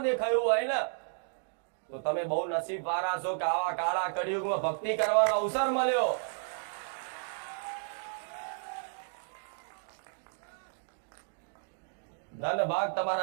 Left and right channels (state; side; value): silent; left; digital silence